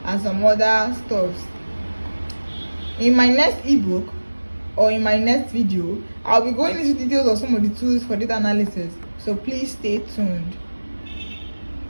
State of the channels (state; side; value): inverted; both; correlation -1.00